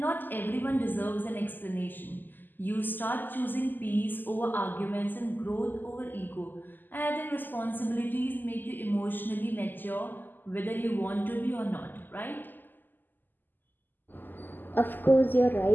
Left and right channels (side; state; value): right; late; 0.089 ms